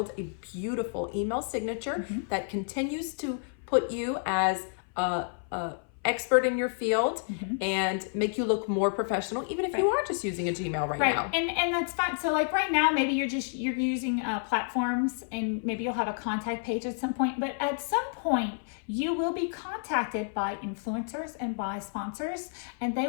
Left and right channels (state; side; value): silent; right; 57 dB below the other